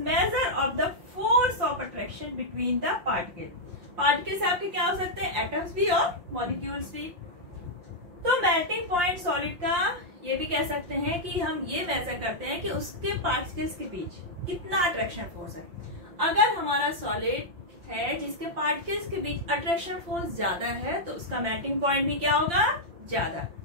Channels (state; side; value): late; left; 5.7 ms